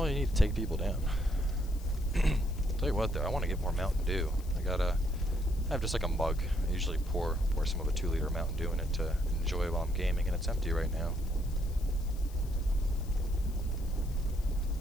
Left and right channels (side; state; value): left; noise; hiss, 21 dB below the sound